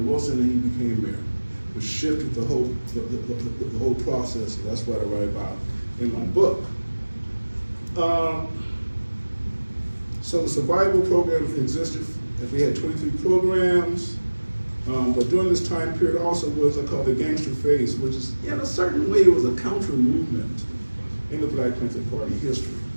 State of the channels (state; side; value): inverted; both; correlation -1.00